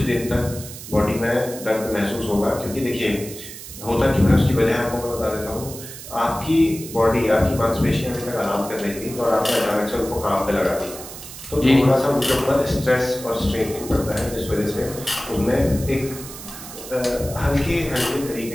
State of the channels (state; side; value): noise; right; hiss, 13 dB below the sound